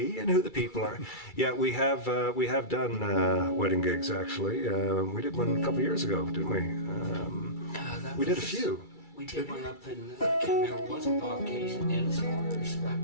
and who the people are. Yeah, we have done wedding gigs actually. We did one a couple years ago, didn't we? We did a few. We did one up in, I can't remember, it wasn't Bob Case in Edison or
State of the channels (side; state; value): right; late; 2.3 ms